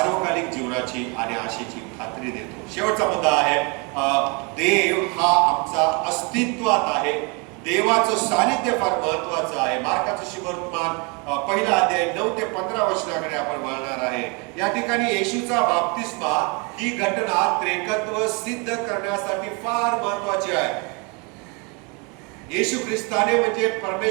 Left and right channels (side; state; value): left; quieter; 31.7 dB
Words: जीवनाची आणि आशेची खात्री देतो. शेवटचा मुद्दा आहे, देव हा आमचा अस्तित्वात आहे. देवाचं सानिध्य फार महत्वाचं आहे. मार्काचं शुभवर्तमान पहिला अध्याय 9 ते 15 वचनाकडे आपण वळणार आहे. या ठिकाणी येशूचा बाप्तिस्मा ही घटना त्रेकत्व सिद्ध करण्यासाठी फार महत्वाची आहे. येशू ख्रिस्ताने म्हणजे